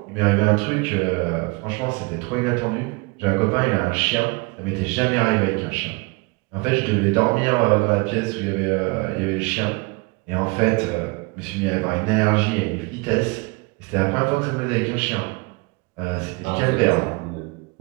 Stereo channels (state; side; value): quieter; left; 27.3 dB